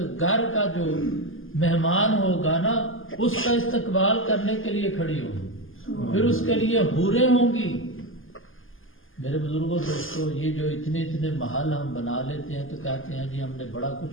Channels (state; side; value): late; right; 0.59 ms